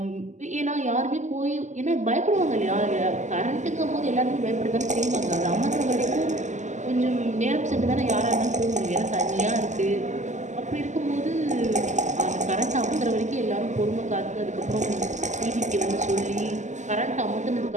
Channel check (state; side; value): late; left; 0.34 ms